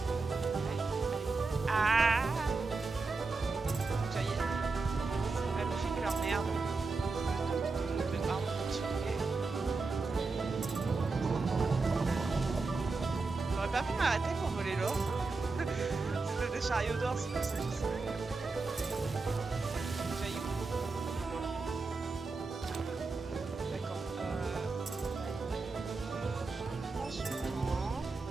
Ah! Ça y est. C'est pas logique leur merde. Pardon, continuer. J'aurais pas pu m'arrêter pour voler l'or. C'était des chariots d'or, c'est pour ça que je sais.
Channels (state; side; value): quieter; left; 3.9 dB